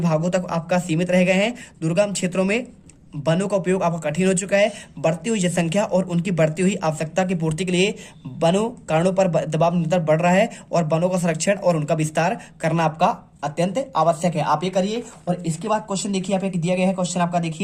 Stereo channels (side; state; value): both; identical; correlation 1.00